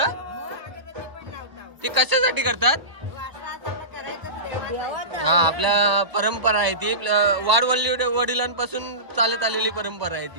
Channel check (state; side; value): late; left; 1.0 ms